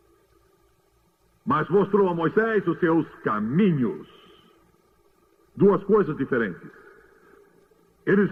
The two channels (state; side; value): identical; both; correlation 1.00